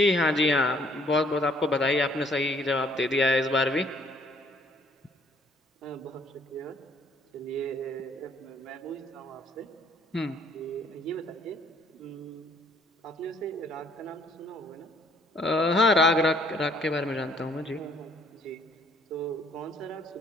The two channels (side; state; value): both; normal; correlation 0.62